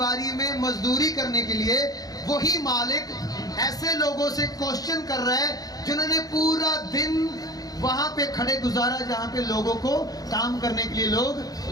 में मजदूरी करने के लिए, वही मालिक ऐसे लोगों से क्वेश्चन कर रहा है जिन्होंने पूरा दिन वहां पे खड़े गुजारा जहां पे लोगों को काम करने के लिए लोग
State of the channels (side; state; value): right; late; 0.18 ms